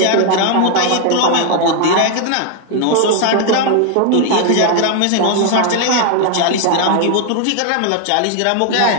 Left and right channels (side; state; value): both; different; correlation 0.00